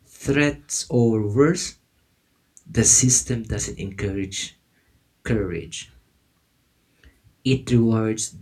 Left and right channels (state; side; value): identical; both; correlation 1.00